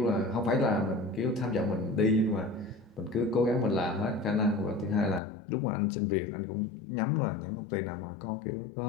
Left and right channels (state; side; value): drops out; right; at 5.2 s